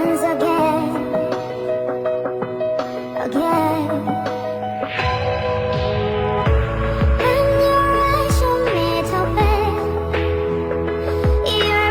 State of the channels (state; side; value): identical; both; correlation 1.00